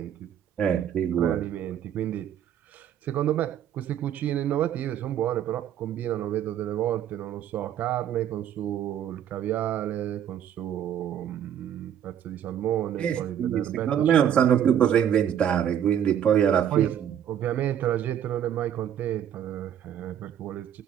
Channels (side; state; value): left; quieter; 9.8 dB